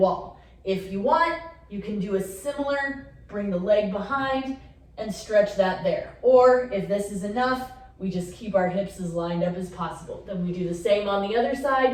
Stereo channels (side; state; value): both; identical; correlation 1.00